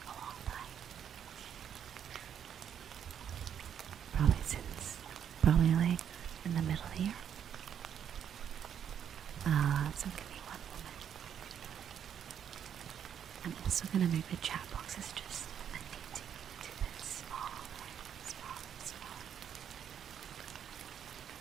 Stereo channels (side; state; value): left; quieter; 8.8 dB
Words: long time. Probably like in the middle here. So give me one moment. I'm also gonna make the chat boxes just a teeny bit smaller.